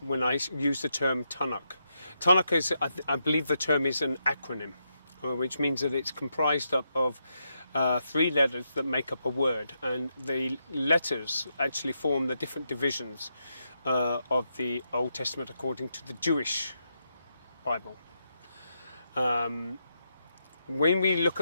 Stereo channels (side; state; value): both; inverted; correlation -0.82